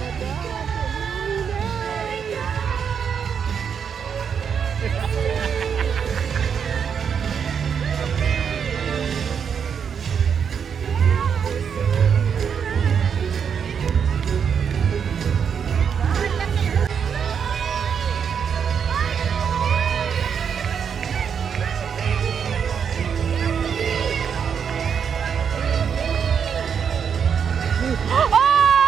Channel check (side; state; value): left; quieter; 7.2 dB